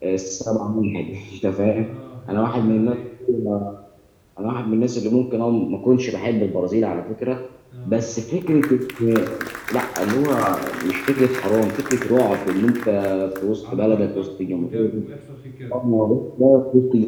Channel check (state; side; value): identical; both; correlation 1.00